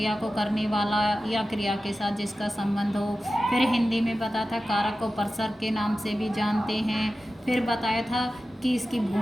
को करने वाला या क्रिया के साथ जिसका संबंध हो। फिर हिंदी में बताया था कारक को परसर्ग के नाम से भी जानते हैं। फिर बताया था कि इसकी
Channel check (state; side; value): normal; both; correlation 0.94